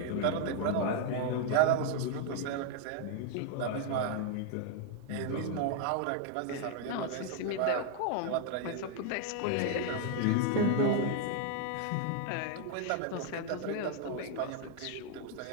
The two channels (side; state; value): both; different; correlation 0.00